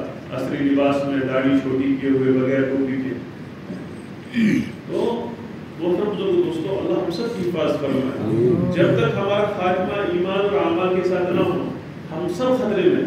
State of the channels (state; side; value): identical; both; correlation 1.00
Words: عصری لباس میں داڑھی چھوٹی کیے ہوئے بغیر ٹوپی کے. تو محترم دوستو اللہ ہم سب کی حفاظت فرمائے. جب تک ہمارا خاتمہ ایمان اور اعمال کے ساتھ نہ ہو ہم سب خطرے میں